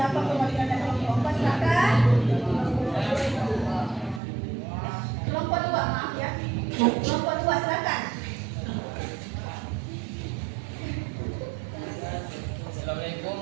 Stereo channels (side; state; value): left; drops out; at 4.2 s